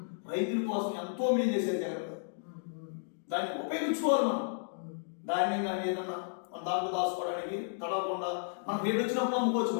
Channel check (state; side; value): silent; right; digital silence